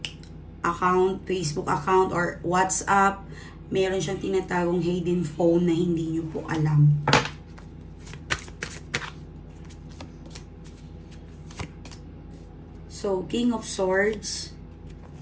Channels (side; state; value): both; identical; correlation 1.00